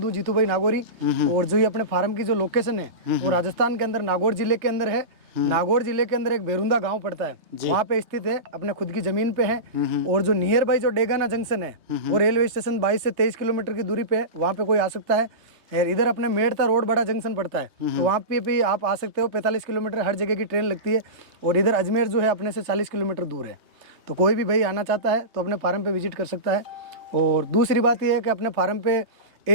हूँ, जीतू भाई नागौरी। और जो ये अपने फार्म की जो लोकेशन है वो राजस्थान के अंदर नागौर जिले के अंदर है। नागौर जिले के अंदर एक बेरुंदा गांव पड़ता है, वहाँ पे स्थित है, अपने खुद की जमीन पे है। और जो नियर बाई जो डेगाना जंक्शन है वो रेलवे स्टेशन 22 से 23 किलोमीटर की दूरी पे है, वहाँ पे कोई आ सकता है। यार इधर अपने मेड़ता रोड बड़ा जंक्शन पड़ता है, तो वहाँ पे भी आप आ सकते हो। 45 किलोमीटर हर जगह की ट्रेन लगती है। और इधर अजमेर जो है अपने से 40 किलोमीटर दूर है, तो कोई भी भाई आना चाहता है तो अपने फार्म पे विजिट कर सकता है। और दूसरी बात यह है कि अपने फार्म पे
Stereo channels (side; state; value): left; late; 3.2 ms